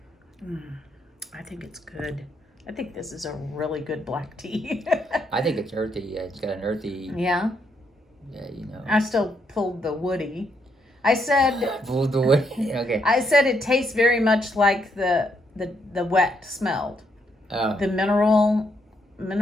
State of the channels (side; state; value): both; normal; correlation 0.76